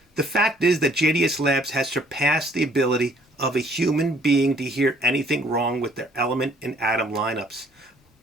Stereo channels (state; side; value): normal; both; correlation 0.61